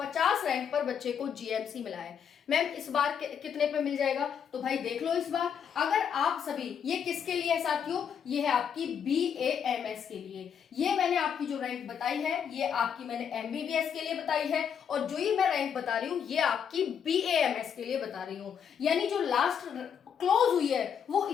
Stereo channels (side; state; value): right; quieter; 7.7 dB